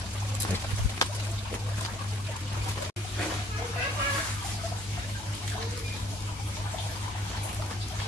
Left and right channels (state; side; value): normal; both; correlation 0.60